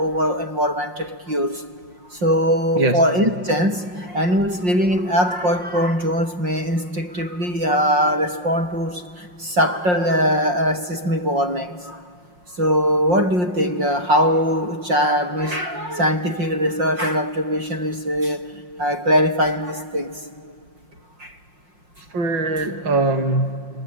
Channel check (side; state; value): left; late; 5.6 ms